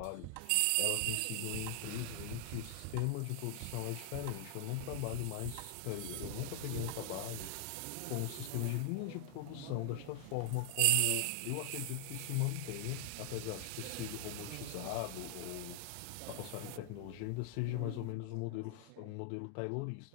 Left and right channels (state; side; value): different; both; correlation 0.00